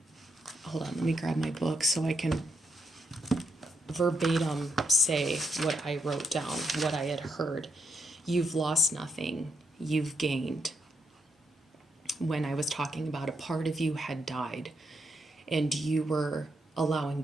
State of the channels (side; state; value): both; normal; correlation 0.79